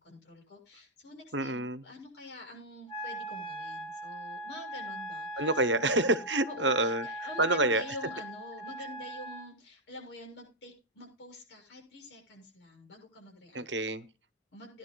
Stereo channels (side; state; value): both; normal; correlation -0.03